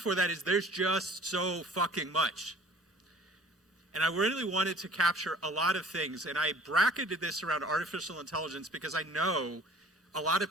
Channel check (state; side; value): normal; both; correlation 0.50